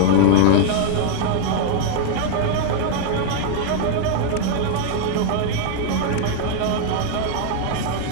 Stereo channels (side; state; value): both; different; correlation 0.00